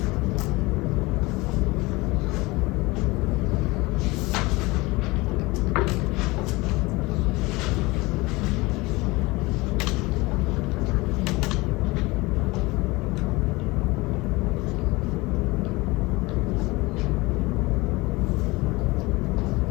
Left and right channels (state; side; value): quieter; right; 22.7 dB